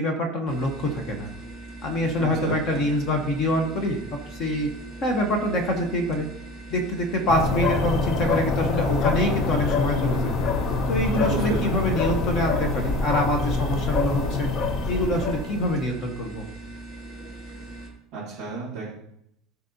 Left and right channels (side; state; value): both; normal; correlation 0.36